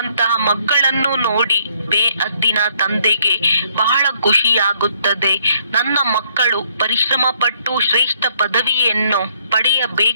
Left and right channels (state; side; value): inverted; both; correlation -0.68